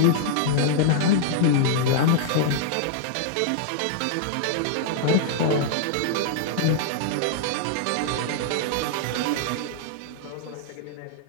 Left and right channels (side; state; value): both; different; correlation -0.01